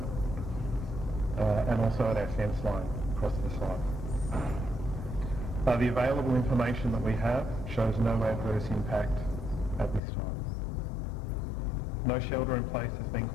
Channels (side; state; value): right; drops out; at 10.0 s